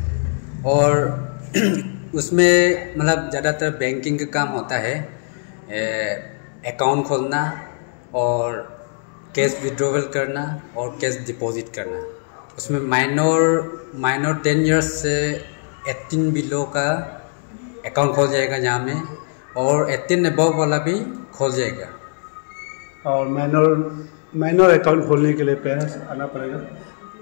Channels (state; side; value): silent; right; digital silence